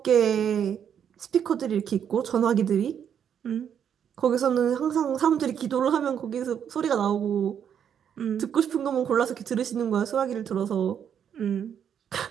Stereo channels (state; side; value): quieter; left; 8.5 dB